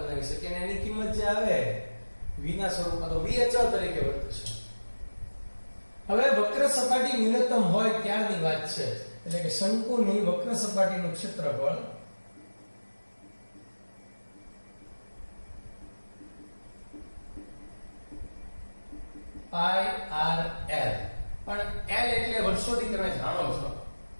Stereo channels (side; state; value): both; inverted; correlation -1.00